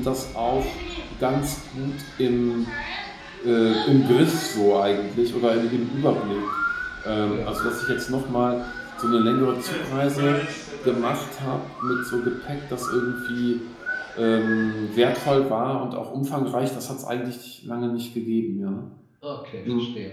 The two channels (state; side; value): identical; both; correlation 1.00